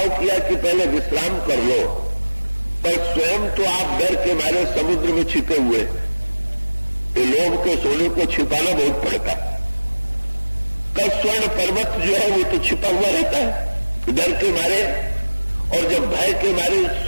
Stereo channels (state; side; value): inverted; both; correlation -1.00